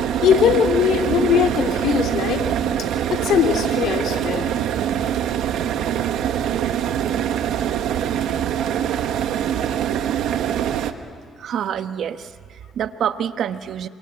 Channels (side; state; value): both; normal; correlation 0.52